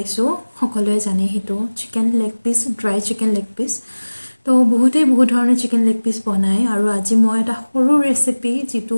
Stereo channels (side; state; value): both; inverted; correlation -1.00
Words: সকলোৱে জানে সেইটো chicken leg piece, dry chicken leg piece. তো বহুতেই বহুত ধৰণৰ চিকেন লেগ পিচ বনায় আৰু আজি মই এটা সৰু ৰেচিপি